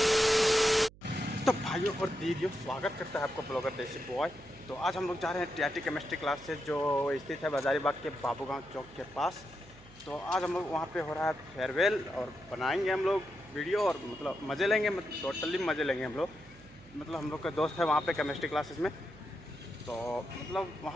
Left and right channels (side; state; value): right; noise; hum, 22 dB below the sound